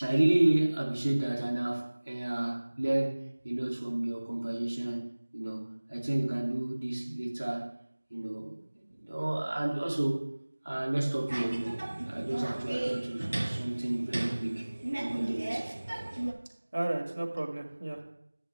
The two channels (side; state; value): both; inverted; correlation -1.00